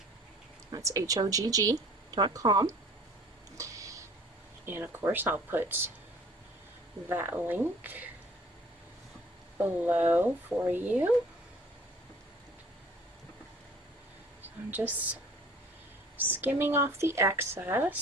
That's HOGG.com. And of course I'll put that link below for you. So I'm just skimming off the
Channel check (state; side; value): normal; both; correlation 0.51